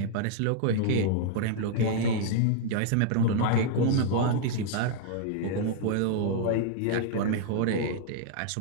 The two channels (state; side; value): different; both; correlation -0.01